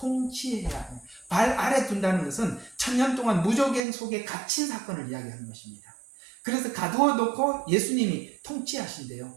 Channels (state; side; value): drops out; left; at 3.8 s